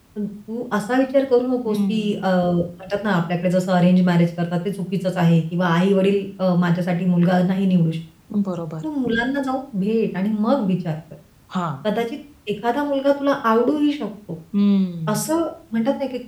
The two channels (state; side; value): identical; both; correlation 1.00